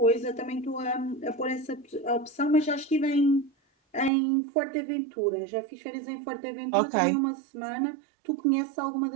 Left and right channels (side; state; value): left; drops out; at 4.1 s